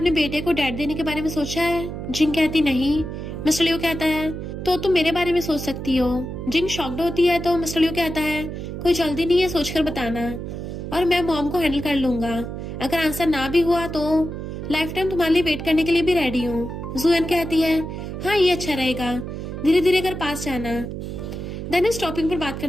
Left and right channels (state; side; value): noise; right; hum, 7 dB below the sound